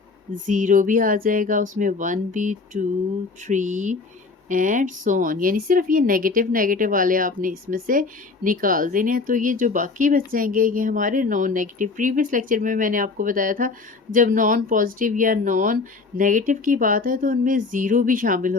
0 भी आ जाएगा उसमें, 1 भी, 2 3 एंड सो ऑन, यानी सिर्फ ये नेगेटिव वाले आपने इसमें से निकाल देने हैं। तो ये जो बाकी बच जाएंगे ये हमारे नॉन नेगेटिव। प्रीवियस लेक्चर में मैंने आपको बताया था जब नॉन पॉजिटिव या नॉन नेगेटिव की बात है तो उनमें ज़ीरो भी शामिल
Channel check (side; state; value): right; quieter; 4.2 dB